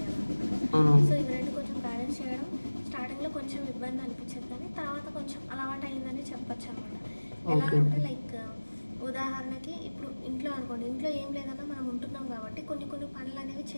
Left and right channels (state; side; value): inverted; both; correlation -1.00